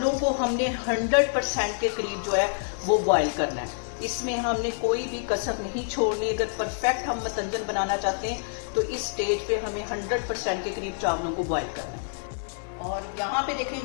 को हमने 100% के करीब जो है वो बॉयल करना है। इसमें हमने कोई भी कसर नहीं छोड़नी। अगर परफेक्ट हम मतंजन बनाना चाहते हैं तो इस स्टेज पे हमें 100% के करीब चावलों को बॉयल करना है। और यहाँ पे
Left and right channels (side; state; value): right; silent; digital silence